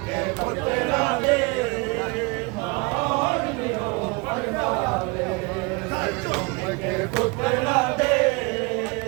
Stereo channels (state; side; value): quieter; left; 27.3 dB